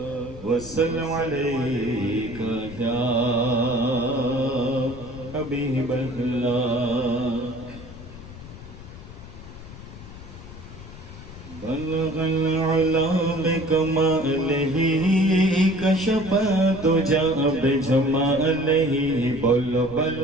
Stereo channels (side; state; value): left; noise; rumble, 15 dB below the sound